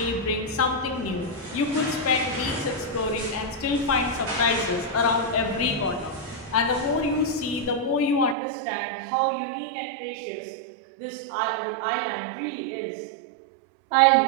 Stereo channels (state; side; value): drops out; left; at 8.3 s